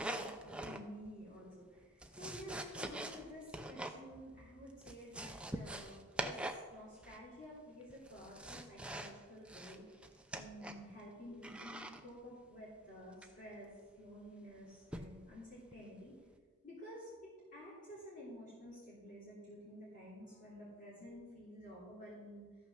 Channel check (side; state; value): both; normal; correlation 0.52